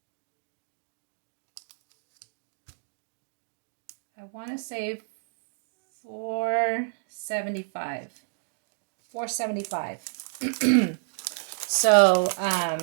I want to say $4.75. $4.75. So,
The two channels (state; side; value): silent; left; digital silence